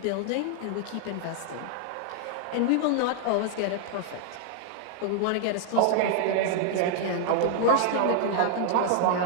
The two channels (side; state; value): both; different; correlation -0.01